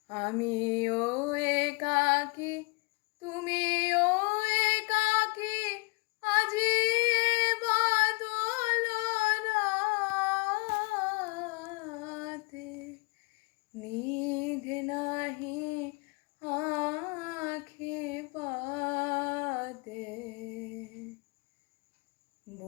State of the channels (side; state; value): right; quieter; 28.5 dB